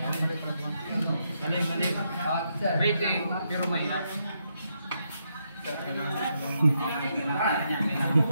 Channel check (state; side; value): inverted; both; correlation -0.80